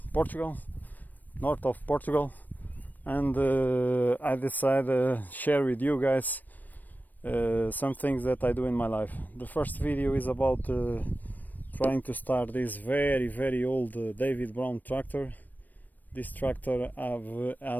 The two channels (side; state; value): right; late; 0.086 ms